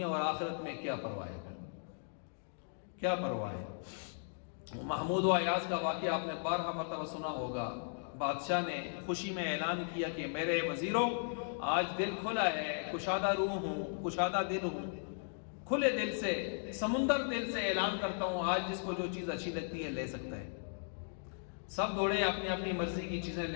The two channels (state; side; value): silent; right; digital silence